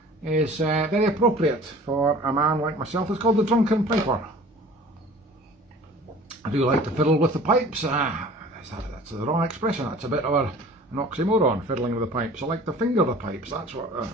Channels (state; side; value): normal; both; correlation 0.46